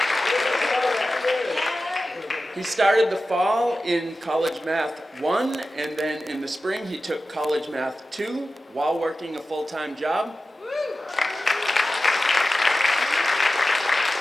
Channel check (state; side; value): normal; both; correlation 0.94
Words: He started the fall in College Math 1, and then in the spring he took College Math 2 while working a full-time job.